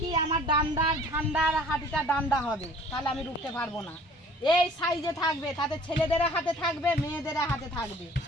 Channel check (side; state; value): both; normal; correlation 0.51